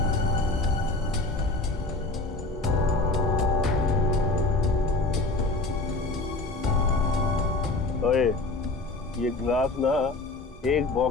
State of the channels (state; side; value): quieter; right; 3.3 dB